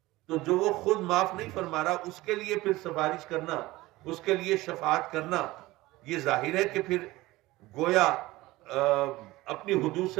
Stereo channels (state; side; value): quieter; left; 19.0 dB